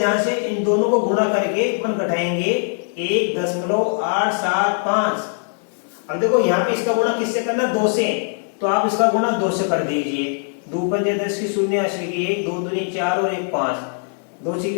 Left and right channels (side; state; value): right; silent; digital silence